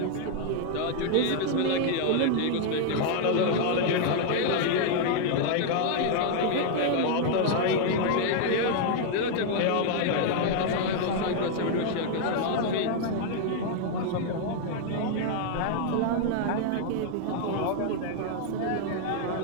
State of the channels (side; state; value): both; different; correlation 0.00